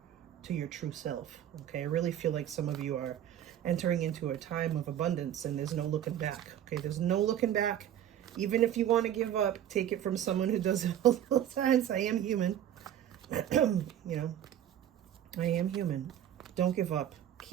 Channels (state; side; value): quieter; left; 10.7 dB